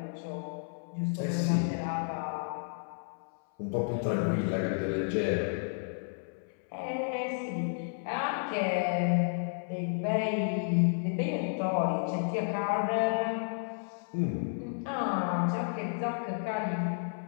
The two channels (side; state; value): right; silent; 56 dB below the other